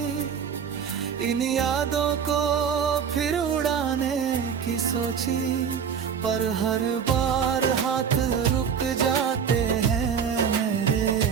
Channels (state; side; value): quieter; left; 7.2 dB